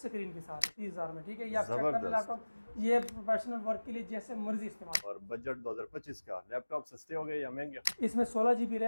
के साथ 30,000 में। ठीक है, ये आप चेक कर ले लैपटॉप, ये प्रोफेशनल वर्क के लिए जैसे मर्जी इस्तेमाल। और बजट 2025 का लैपटॉप सस्ते हो गए या महंगे? इसमें 16 GB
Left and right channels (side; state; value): both; inverted; correlation -1.00